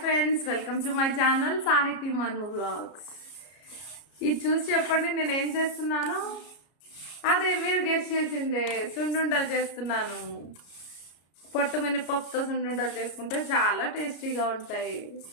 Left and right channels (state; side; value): late; right; 33 ms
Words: friends, welcome to my channel సాహితీ మను vlogs. ఇది చూసి చెప్పండి నేను ఏం చేస్తున్నాను. అదే మీరు గెస్ట్ చేసిందే, సున్నుండలు చేస్తున్నాను. పొట్టు మినపప్పుతో సున్నుండలు చేసుకుంటే చాలా టేస్టీగా ఉంటాయి.